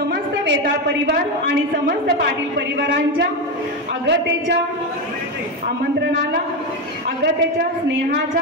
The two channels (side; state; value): both; normal; correlation 0.13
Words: वेताळ परिवार आणि समस्त पाटील परिवारांच्या अगतेच्या आमंत्रणाला अगतेच्या स्नेहाच्या